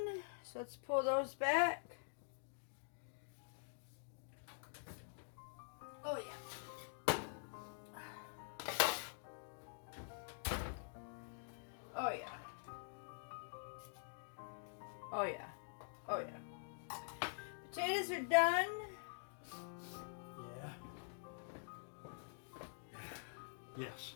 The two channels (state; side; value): silent; right; digital silence